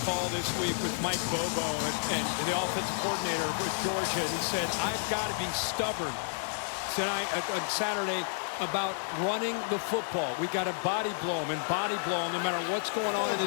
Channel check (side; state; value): right; silent; digital silence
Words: call this week with Mike Bobo and the offensive coordinator with Georgia. And he said, I've got to be stubborn tonight on Saturday about running the football. We got to body blow them and body blow them no matter what's going on in